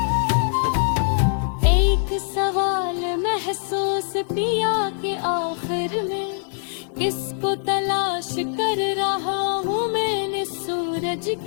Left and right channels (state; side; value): silent; right; digital silence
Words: महसूस पिया के आखिर में किसको तलाश कर रहा हूँ मैंने सूरज